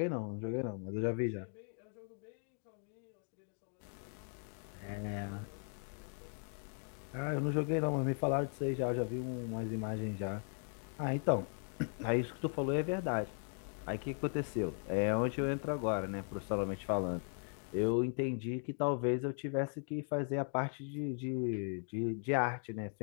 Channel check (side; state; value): right; silent; 52 dB below the other